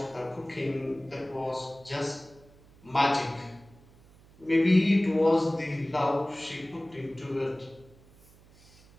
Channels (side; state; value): right; noise; hum, 26 dB below the sound